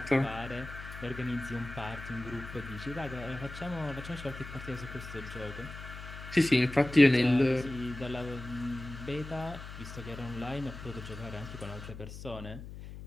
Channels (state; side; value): noise; left; hum, 11 dB below the sound